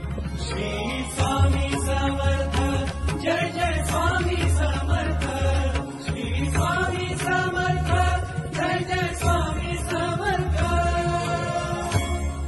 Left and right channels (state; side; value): identical; both; correlation 1.00